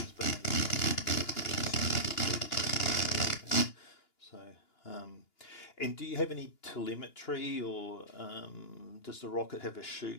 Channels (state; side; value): late; right; 2.9 ms